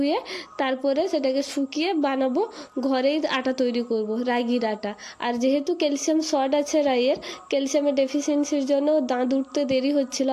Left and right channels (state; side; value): identical; both; correlation 1.00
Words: তারপরে সেটাকে শুকিয়ে বানাবো, ঘরেই আটা তৈরি করব রাগির আটা। আর যেহেতু ক্যালসিয়াম শর্ট আছে রাইয়ের, ক্যালসিয়ামের ডেফিসিয়েন্সির জন্য দাঁত উঠতে দেরি হচ্ছিল,